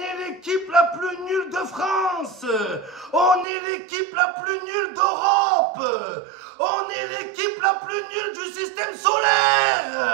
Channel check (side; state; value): left; drops out; at 3.5 s